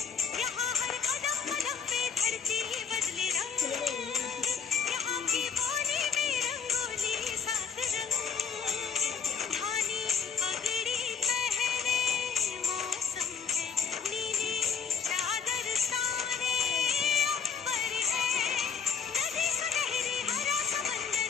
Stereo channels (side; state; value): right; quieter; 6.6 dB